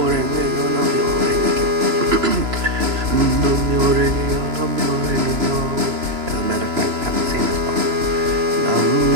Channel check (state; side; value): late; left; 3.0 ms